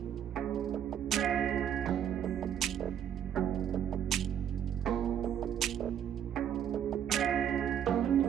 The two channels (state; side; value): quieter; left; 9.3 dB